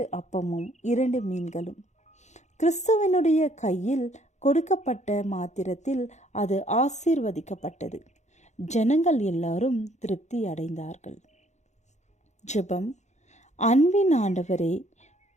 அப்பமும் 2 மீன்களும். கிறிஸ்துவனுடைய கையில் கொடுக்கப்பட்ட மாத்திரத்தில் அது ஆசீர்வதிக்கப்பட்டது. ஜனங்கள் எல்லாரும் திருப்தி அடைந்தார்கள். ஜெபம். அன்பின் ஆண்டவரே,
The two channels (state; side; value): late; right; 0.34 ms